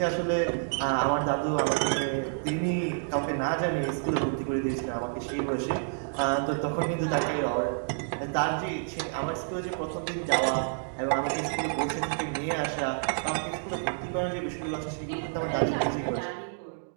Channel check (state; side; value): silent; left; digital silence